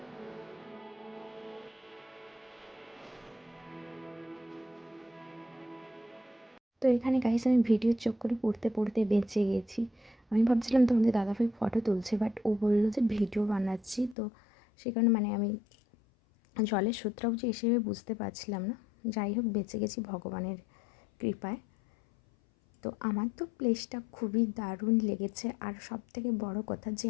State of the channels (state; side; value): drops out; right; at 14.2 s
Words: তো এখানে গাইস আমি ভিডিওর চক্করে পড়তে পড়তে বেঁচে গেছি। আমি ভাবছিলাম তোমাদের দাদাভাই ফটো তুলছে, বাট ও বললো যে ভিডিও বানাচ্ছি। তো সে কারণে মানে আমি জলের স্রোতটাও যে এসে বুঝতে পারছিলাম না। যাই হোক, বেঁচে গেছি ভগবানের কৃপায়। তো আমার তো প্লেসটা খুবই দারুণ লেগেছে, আর সব থেকে বড়ো কথা যে